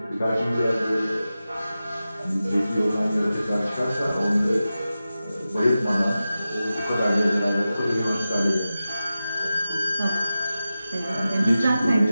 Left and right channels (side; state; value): both; inverted; correlation -0.94